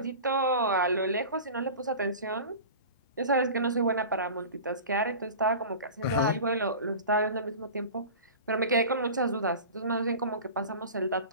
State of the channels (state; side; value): inverted; both; correlation -0.35